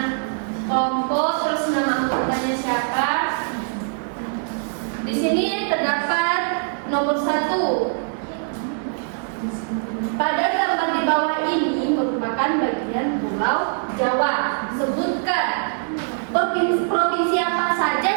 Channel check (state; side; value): silent; left; 64 dB below the other